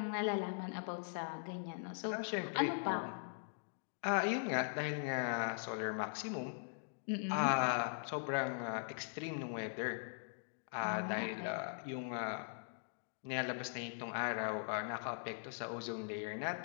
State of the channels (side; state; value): right; silent; digital silence